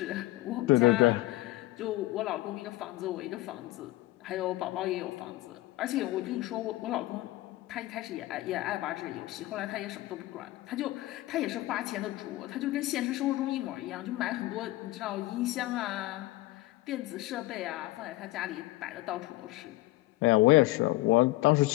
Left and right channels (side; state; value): right; quieter; 18.3 dB